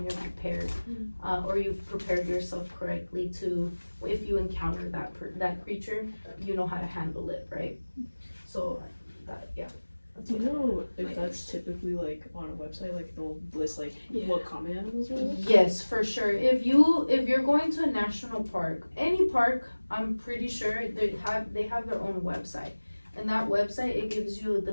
you're prepared, or you've prepared yourself correctly to, if you encounter that creature, you know how to handle it, right? So that, yeah. Do you know if that's typically like on a website, like they'll list like what common animals are? Yes, for sure. If you're going to a national park, any park, I'm pretty sure they have their own website. And that website, it gives you the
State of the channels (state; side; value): inverted; both; correlation -1.00